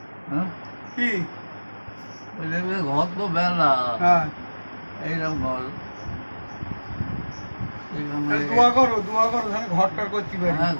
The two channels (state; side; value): inverted; both; correlation -1.00